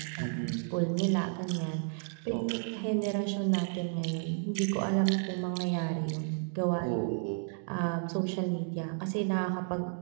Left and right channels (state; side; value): silent; left; 56 dB below the other